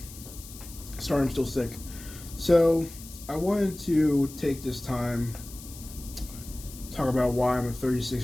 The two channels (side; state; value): left; noise; hiss, 16 dB below the sound